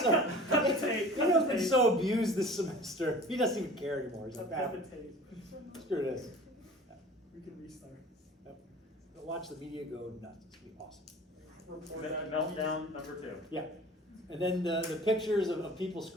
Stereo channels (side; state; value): both; normal; correlation 0.43